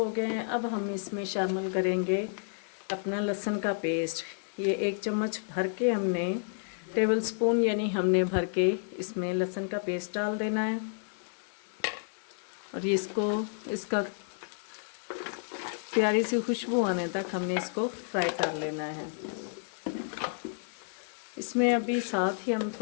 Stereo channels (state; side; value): silent; right; 57 dB below the other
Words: गए हैं। अब हम इसमें शामिल करेंगे अपना लहसुन का पेस्ट। ये 1 चम्मच भर के हमने, टेबल स्पून यानी हमने भर के इसमें लहसुन का पेस्ट डाल देना है। और इसका प्यारी सी खुशबू आने तक हमने इसको फ्राई कर लेना है। इसमें अभी साथ ही हम